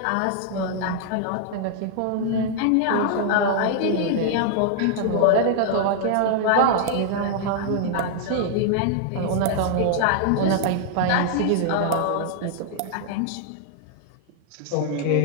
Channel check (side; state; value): both; different; correlation 0.00